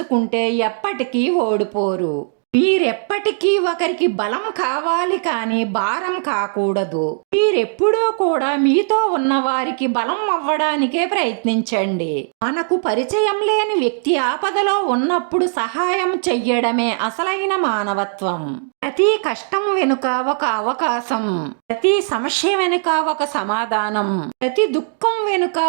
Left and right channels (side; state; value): left; silent; digital silence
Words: ఎప్పటికీ ఓడిపోరు. మీరెప్పటికీ ఒకరికి బలం కావాలి కానీ భారం కాకూడదు. మీరెప్పుడూ కూడా మీతో ఉన్న వారికి బలం అవ్వడానికే ప్రయత్నించండి. మనకు పరిచయం లేని వ్యక్తి ఆపదలో ఉన్నప్పుడు సహాయం చెయ్యడమే అసలైన మానవత్వం. ప్రతి కష్టం వెనుక ఒక అవకాశం, ప్రతి సమస్య వెనుక ఒక సమాధానం, ప్రతి దుఃఖం వెనుక